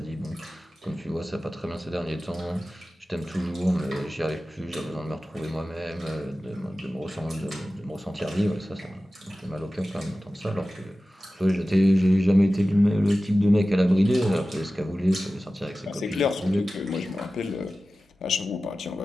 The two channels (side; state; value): both; normal; correlation 0.95